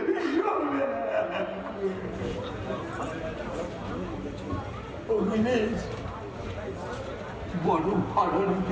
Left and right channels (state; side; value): identical; both; correlation 1.00